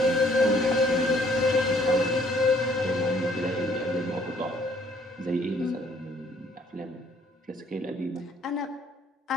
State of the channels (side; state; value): both; normal; correlation 0.62